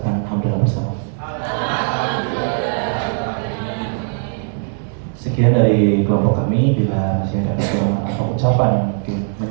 alhamdulillah bersama. Sekian dari kelompok kami. Bila masih ada kekurangan atau ucapan yang mungkin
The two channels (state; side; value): silent; left; digital silence